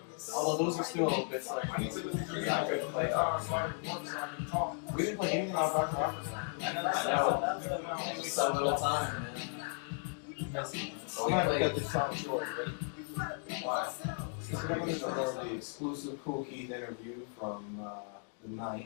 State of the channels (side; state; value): right; silent; 54 dB below the other